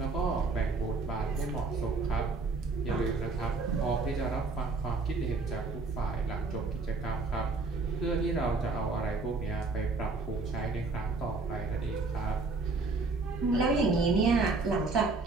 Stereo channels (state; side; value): quieter; left; 3.7 dB